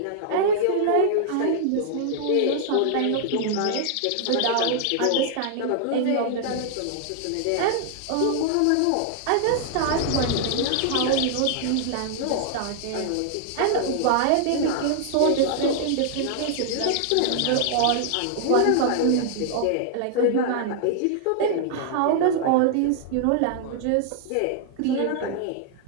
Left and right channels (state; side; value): different; both; correlation -0.01